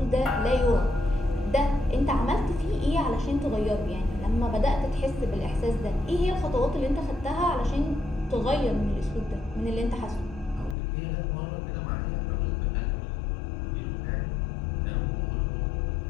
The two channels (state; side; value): drops out; right; at 10.8 s